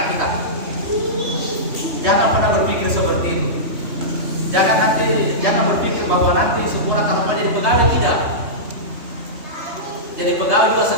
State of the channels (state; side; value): late; left; 3.2 ms